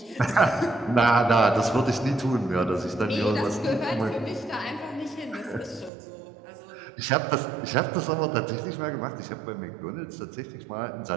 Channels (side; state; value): left; drops out; at 5.9 s